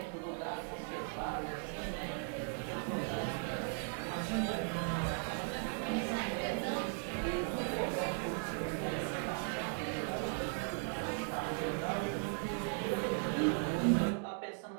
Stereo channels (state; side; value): silent; left; 53 dB below the other